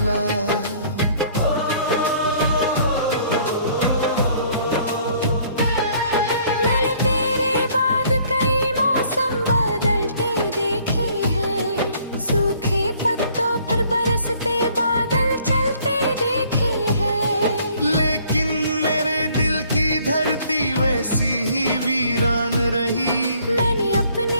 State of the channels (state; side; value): inverted; both; correlation -0.60